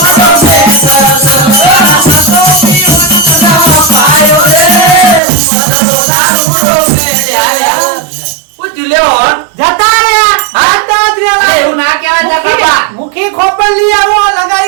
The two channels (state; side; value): drops out; left; at 5.2 s